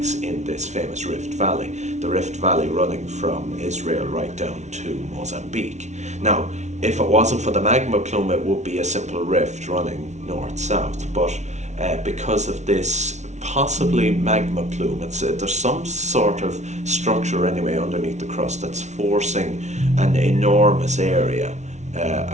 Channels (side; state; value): left; late; 0.33 ms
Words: in this famous Rift Valley, the Rift Valley running from Israel right down to Mozambique. Now, if it wasn't for the magma plume, it would be a simple rift running north-south, but because of this possibly magma plume, there's some sort of structure anyway underneath the crust that's forcing an enormous area